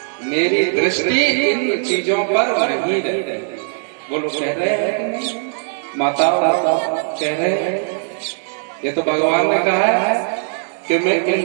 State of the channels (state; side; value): silent; left; 64 dB below the other